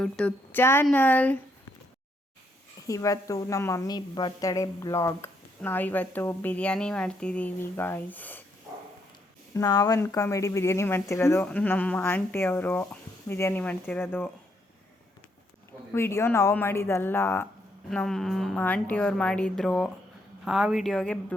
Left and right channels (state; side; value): normal; both; correlation 0.74